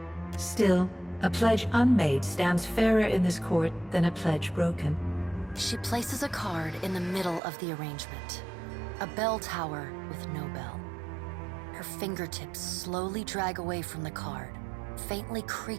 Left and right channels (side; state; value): left; drops out; at 7.4 s